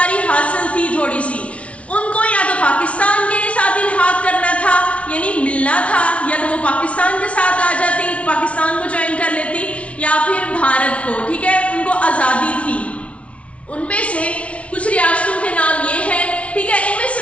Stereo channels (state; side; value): late; right; 0.063 ms